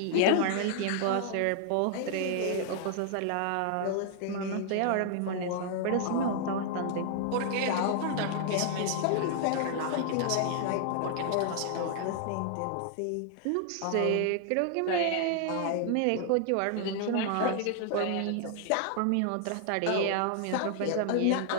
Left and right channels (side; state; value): both; different; correlation 0.00